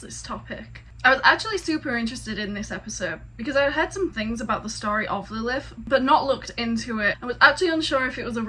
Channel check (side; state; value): both; identical; correlation 1.00